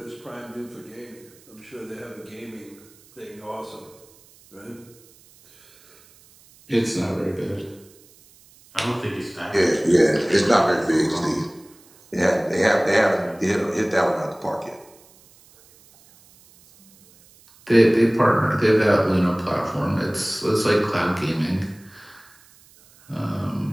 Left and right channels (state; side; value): noise; right; hiss, 27 dB below the sound